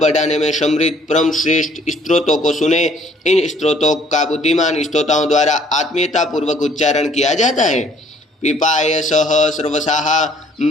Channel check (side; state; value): both; normal; correlation 0.60